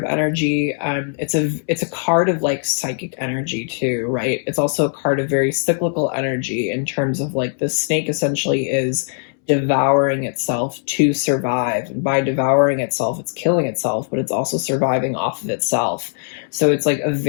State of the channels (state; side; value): silent; right; 66 dB below the other